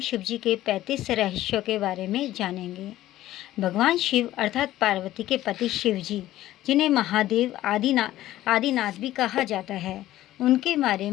जी के 35 रहस्यों के बारे में जानेंगे। भगवान शिव अर्थात पार्वती के पति शिव जी, जिन्हें महादेव आदिनाथ भी कहा जाता है, उनके बारे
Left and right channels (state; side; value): quieter; right; 14.5 dB